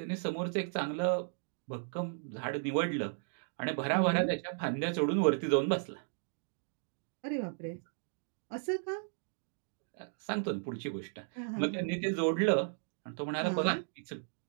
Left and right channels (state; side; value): silent; left; digital silence